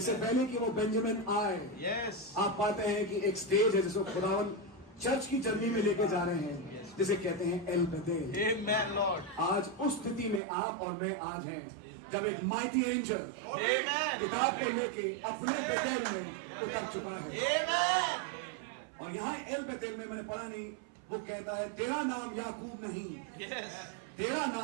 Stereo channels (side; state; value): left; drops out; at 10.4 s